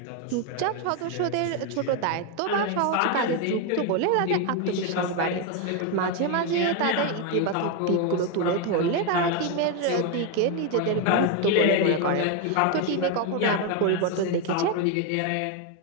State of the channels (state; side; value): different; both; correlation 0.01